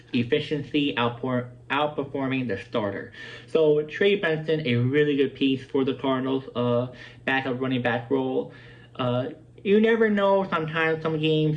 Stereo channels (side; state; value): both; identical; correlation 1.00